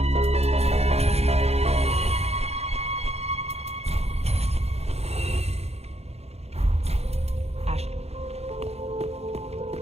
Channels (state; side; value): late; left; 0.30 ms